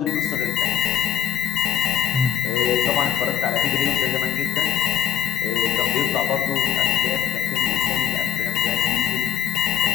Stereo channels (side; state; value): right; quieter; 8.9 dB